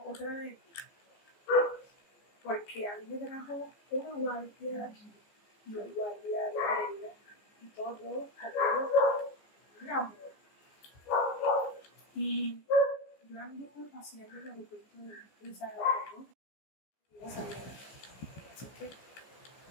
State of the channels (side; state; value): right; late; 15 ms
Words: otra de porque a mí me trajo una guardia de aquí y una guardia de Pereira y todo un amor. Y yo anduve paseando en el aeropuerto de Salvador y iba saliendo. Así que